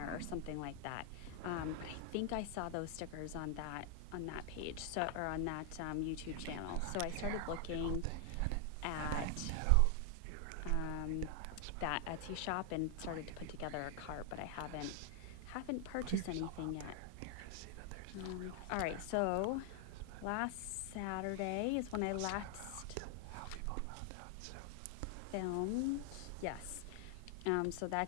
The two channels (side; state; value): both; different; correlation 0.00